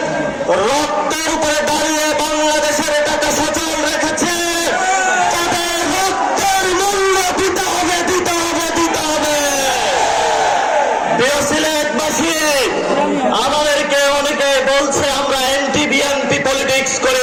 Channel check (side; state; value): both; identical; correlation 1.00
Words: রক্তের উপরে দাঁড়িয়ে বাংলাদেশের টাকা সচল রেখেছে। তাদের রক্তের মূল্য দিতে হবে, দিতে হবে, দিতে হবে। প্রিয় সিলেটবাসী, আমাদেরকে অনেকে বলছে আমরা অ্যান্টি বিএনপি পলিটিক্স